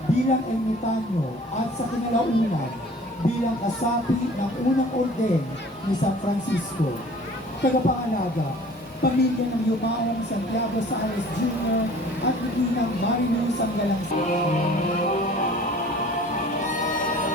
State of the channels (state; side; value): normal; both; correlation 0.48